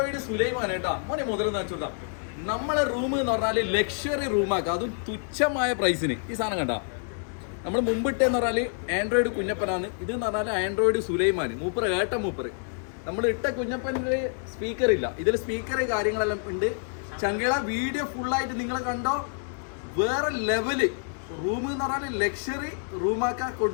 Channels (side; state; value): right; silent; 60 dB below the other